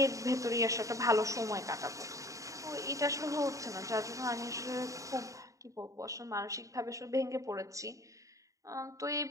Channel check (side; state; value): left; late; 0.16 ms